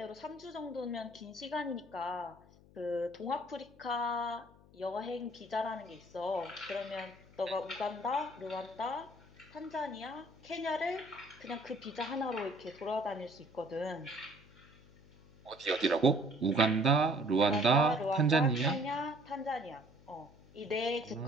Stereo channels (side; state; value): left; noise; hum, 25 dB below the sound